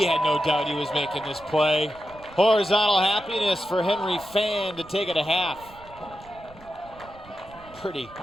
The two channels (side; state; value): right; noise; rumble, 22 dB below the sound